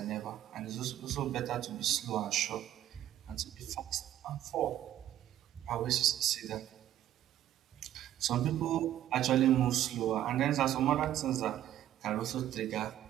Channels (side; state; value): left; quieter; 12.2 dB